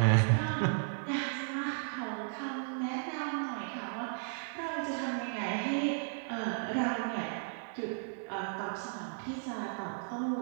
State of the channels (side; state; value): left; silent; digital silence